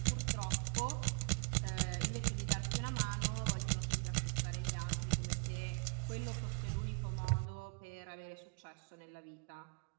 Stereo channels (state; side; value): quieter; left; 39.4 dB